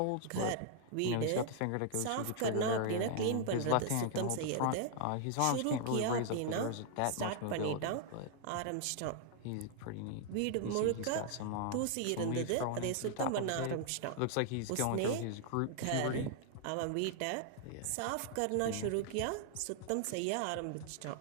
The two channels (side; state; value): both; different; correlation 0.00